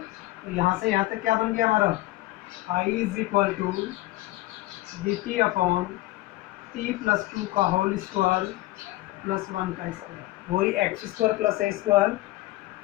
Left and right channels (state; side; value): quieter; right; 18.3 dB